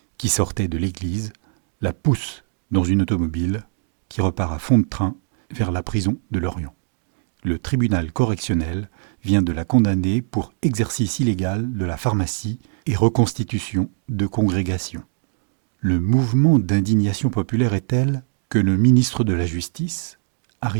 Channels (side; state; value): left; silent; digital silence